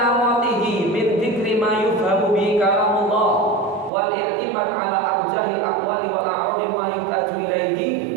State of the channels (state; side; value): drops out; left; at 3.9 s